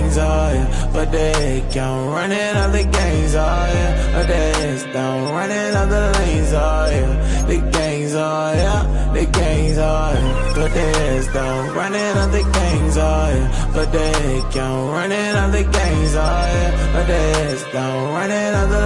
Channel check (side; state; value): both; identical; correlation 1.00